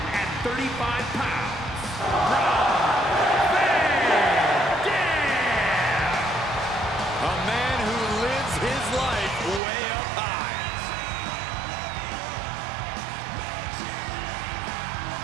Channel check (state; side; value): drops out; left; at 9.6 s